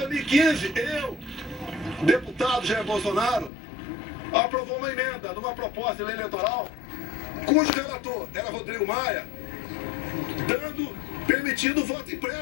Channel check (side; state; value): right; drops out; at 3.5 s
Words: 2015, eu, deputado Jair Bolsonaro, aprovou uma emenda numa proposta de lei eleitoral, cujo relator era Rodrigo Maia, permitindo o voto